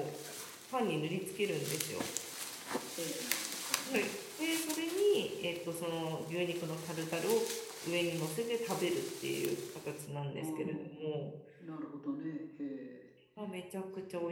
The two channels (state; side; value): identical; both; correlation 1.00